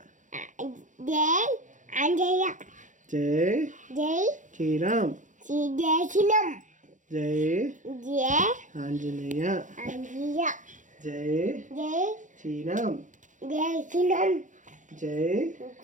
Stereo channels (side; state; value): left; late; 0.37 ms